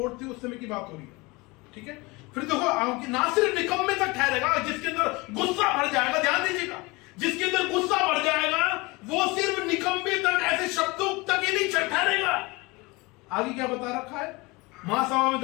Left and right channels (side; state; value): right; quieter; 24.5 dB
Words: थी उस समय की बात हो रही है, ठीक है। फिर देखो ना सिर्फ निकम्मे तक ठहरेगा जिसके अंदर गुस्सा भर जाएगा, ध्यान दीजिएगा, जिसके अंदर गुस्सा भर जाएगा वो सिर्फ निकम्मे तक, ऐसे शब्दों तक ही नहीं ठहरेगा। आगे क्या बता रखा है? महासभा में